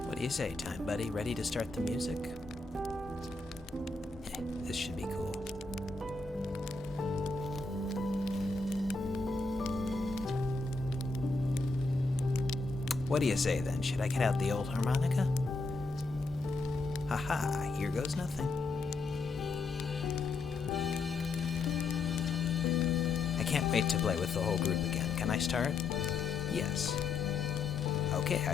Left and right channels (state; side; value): quieter; right; 3.8 dB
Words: What do you say, Time Buddy? Ready to start the music? This should be cool. What do you say then? Should I get out the old harmonica? Haha, here goes nothing. I can't wait to play with the whole group again. Can I start? Yes. Okay,